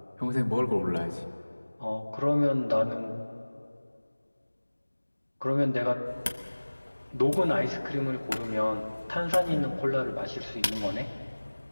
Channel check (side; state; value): both; inverted; correlation -1.00